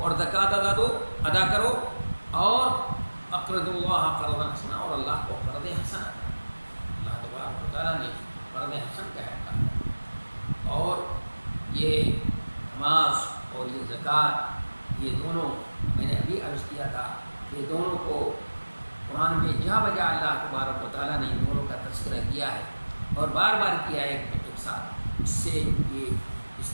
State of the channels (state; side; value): inverted; both; correlation -1.00